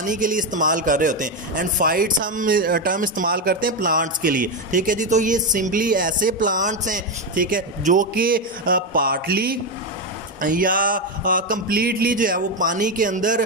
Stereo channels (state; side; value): normal; both; correlation 0.10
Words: के लिए इस्तेमाल कर रहे होते हैं एंड फाइट्स हम टर्म इस्तेमाल करते हैं प्लांट्स के लिए। ठीक है जी, तो ये सिंपली ऐसे प्लांट्स हैं, ठीक है, जो कि पार्टली या कंप्लीटली जो है वो पानी के